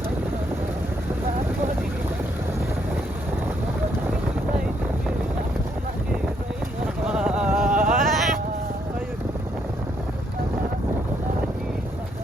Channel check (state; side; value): normal; both; correlation 0.73